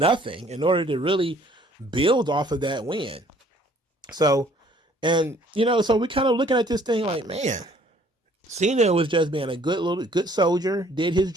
in order to really build off of that win. So, and so we're kind of looking at this thing like, man, Cena was just being a good soldier, did his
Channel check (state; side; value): normal; both; correlation 0.59